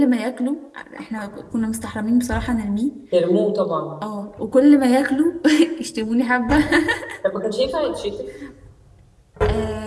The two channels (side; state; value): both; identical; correlation 1.00